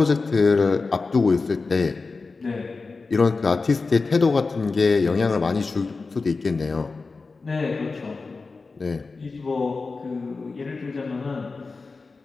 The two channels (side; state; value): right; quieter; 4.1 dB